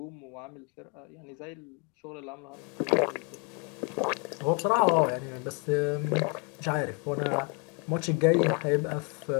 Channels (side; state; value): right; quieter; 31.8 dB